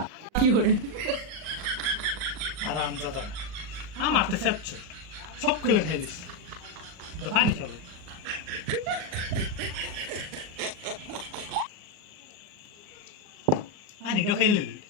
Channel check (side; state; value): left; late; 39 ms